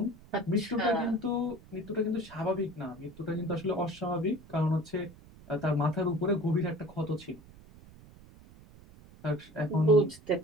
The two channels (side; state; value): right; noise; rumble, 21 dB below the sound